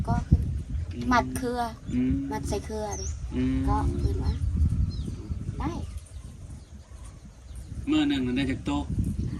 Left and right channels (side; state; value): both; identical; correlation 1.00